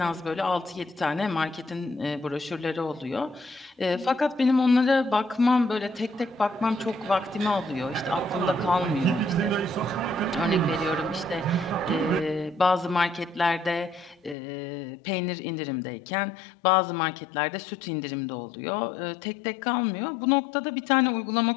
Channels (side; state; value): right; drops out; at 14.4 s